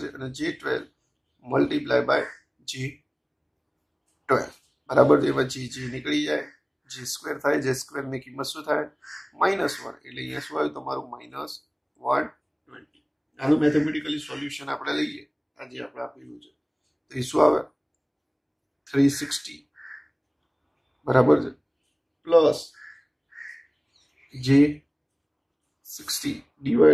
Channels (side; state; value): both; identical; correlation 1.00